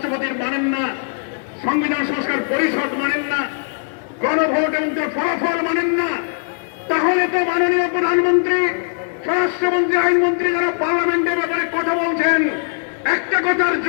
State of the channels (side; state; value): right; silent; digital silence